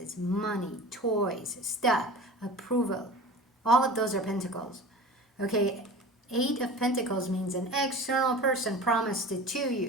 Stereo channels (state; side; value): normal; both; correlation 0.37